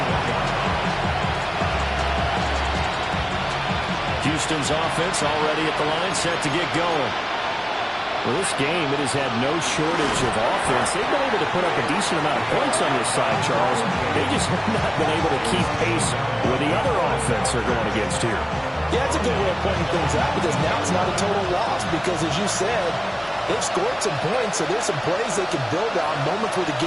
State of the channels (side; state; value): both; identical; correlation 1.00